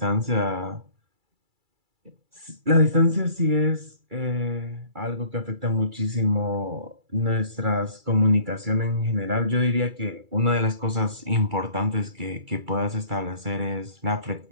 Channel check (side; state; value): left; late; 2.3 ms